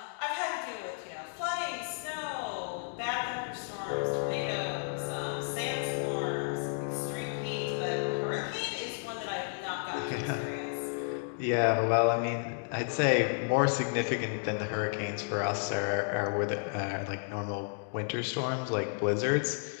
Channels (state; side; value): silent; right; digital silence